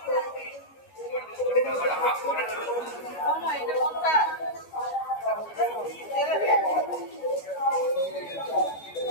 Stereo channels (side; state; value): right; late; 13 ms